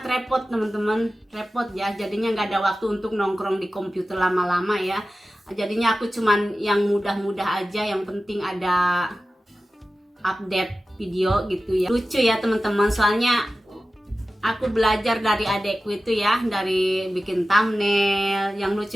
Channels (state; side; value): normal; both; correlation 0.95